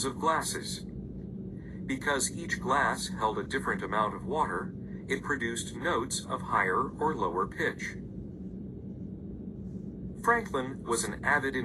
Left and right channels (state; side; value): identical; both; correlation 1.00